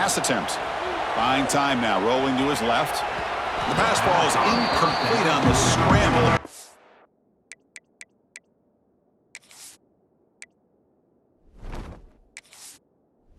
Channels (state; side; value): identical; both; correlation 1.00